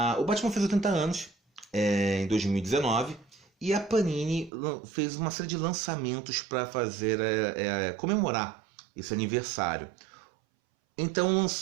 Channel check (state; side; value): drops out; left; at 4.5 s